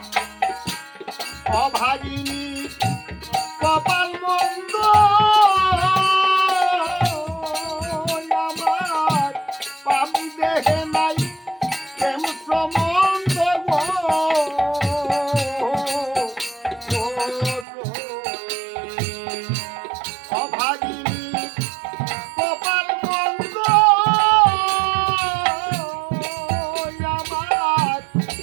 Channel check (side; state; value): left; drops out; at 17.7 s